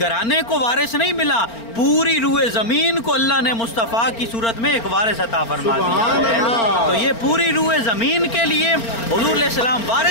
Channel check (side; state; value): right; late; 4.4 ms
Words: کو وارث نہیں ملا, پوری روئے زمین کو اللہ نے مصطفیٰ کی صورت میں ایک وارث عطا فرما دیا ہے. تو یہ پوری روئے زمین کے لیے حضور علیہ السلام